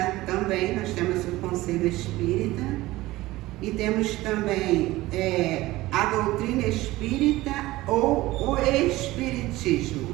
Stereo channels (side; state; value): left; quieter; 18.2 dB